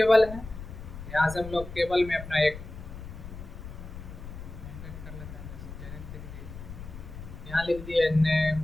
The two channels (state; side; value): noise; left; rumble, 12 dB below the sound